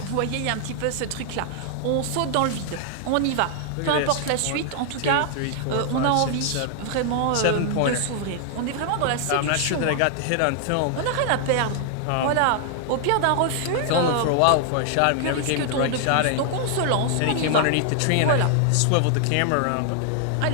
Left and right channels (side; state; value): both; different; correlation 0.00